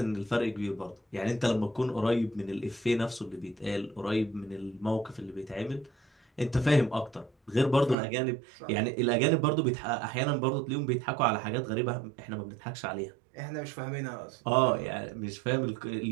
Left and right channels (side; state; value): left; drops out; at 8.0 s